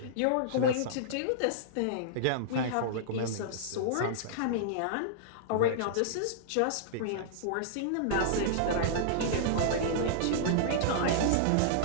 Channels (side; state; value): both; different; correlation -0.02